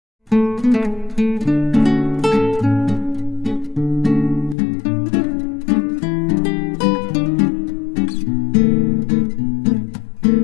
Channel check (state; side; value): drops out; right; at 4.5 s